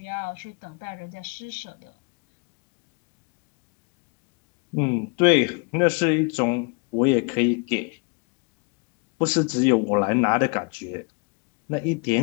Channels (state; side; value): quieter; right; 34.0 dB